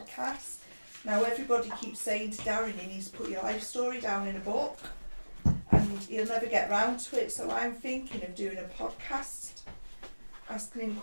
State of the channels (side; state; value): both; inverted; correlation -1.00